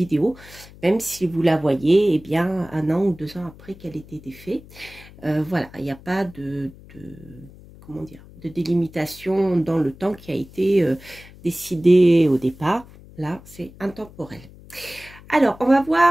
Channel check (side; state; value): left; noise; hum, 21 dB below the sound